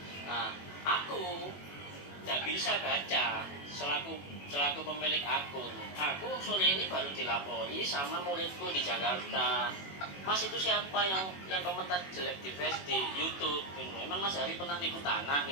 Nah, aku nggak bisa baca selaku selaku pemilik akun. Aku sore ini baru dilapori sama muridku di Jakarta. Mas, itu siapa yang komentar jelek di Facebook, di YouTube gitu. Emang Mas Hari pernah nipu tanah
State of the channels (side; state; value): right; late; 21 ms